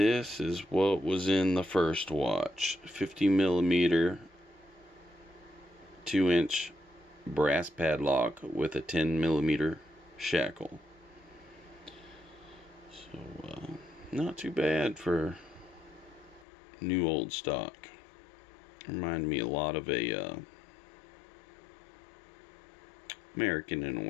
is what was in the first watch. 50 millimeter 2-inch brass padlock with a 10 millimeter shackle. So not too bad for new old stock. Remind me a lot of a American in a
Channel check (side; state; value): right; drops out; at 16.4 s